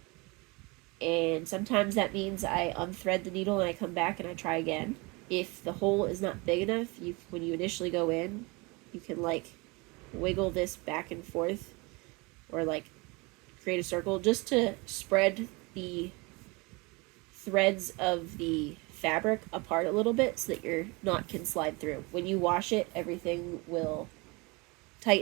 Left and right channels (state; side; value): quieter; left; 26.6 dB